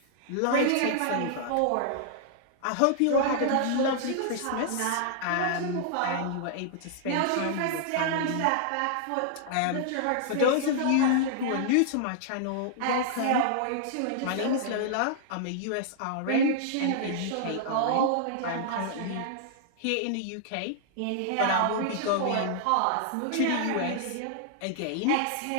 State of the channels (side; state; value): both; different; correlation -0.01